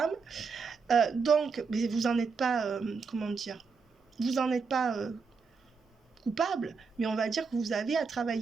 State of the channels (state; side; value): quieter; left; 5.1 dB